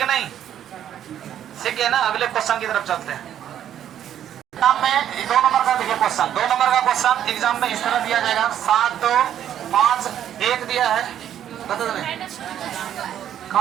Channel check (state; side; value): quieter; left; 10.4 dB